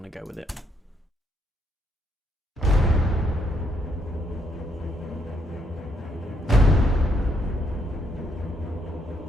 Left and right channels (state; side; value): normal; both; correlation 0.74